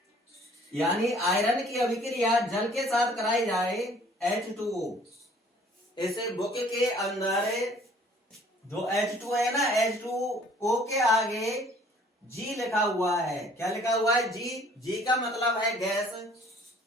यानी आयरन की अभिक्रिया जल के साथ कराई जाए H2O, इसे बुक के अंदर जो H2 है ना, H2O के आगे G लिखा हुआ है। क्या लिखा हुआ है, G का मतलब है गैस।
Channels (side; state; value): both; normal; correlation 0.56